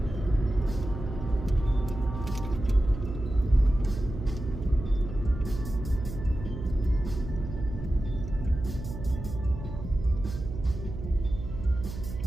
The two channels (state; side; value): noise; right; hum, 8 dB below the sound